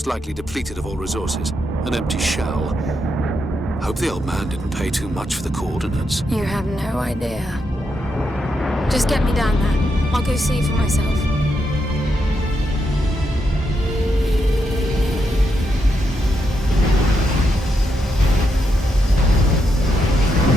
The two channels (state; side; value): normal; both; correlation 0.82